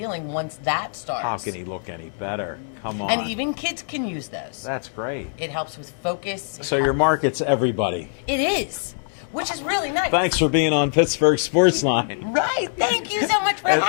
once that starts. How can he look any better? Come on. And even kids can use those. That's great. It helps with focus. So your market's everybody. It is, which is really nice. Thanks for being on Pittsburgh Sports Line. Right. Thank you so much for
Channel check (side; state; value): right; silent; digital silence